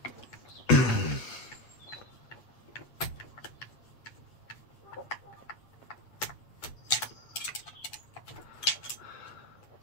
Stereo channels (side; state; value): right; late; 8.2 ms